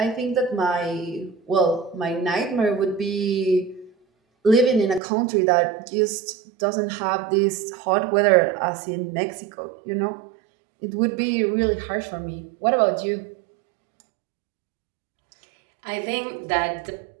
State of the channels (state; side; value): drops out; left; at 5.0 s